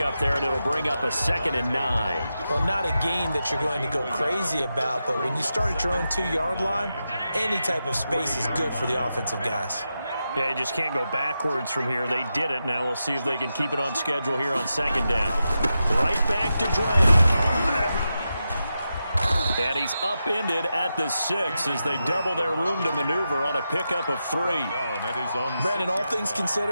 there, and it'll bring up a 2nd and 9. Well, not a game that you're going to go crazy about, but when you start at your own 2-yard line, any type of space is good for the offensive guys. Yeah, you just can't go backwards from here. They did it. Now we'll see if they can keep it on schedule here on 2nd down. Right back to Drake. And he's upended at the 6 as they double their room to maneuver on a pickup of 3. Brandon, all things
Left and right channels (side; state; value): both; inverted; correlation -0.89